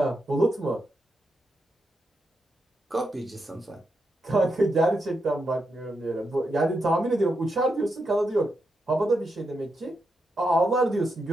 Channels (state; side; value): normal; both; correlation 0.84